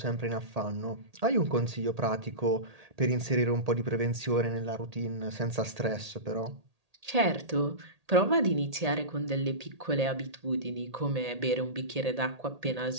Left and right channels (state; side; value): late; left; 1.8 ms